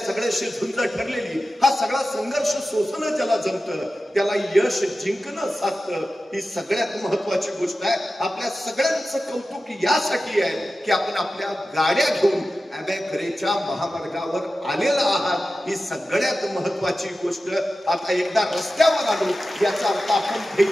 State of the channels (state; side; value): normal; both; correlation 0.94